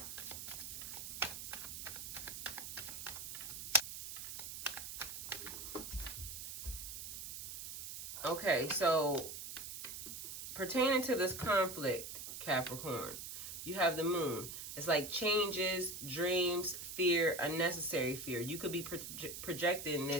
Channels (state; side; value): noise; right; hiss, 8 dB below the sound